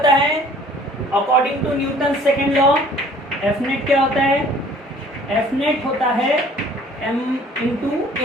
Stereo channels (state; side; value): normal; both; correlation 0.53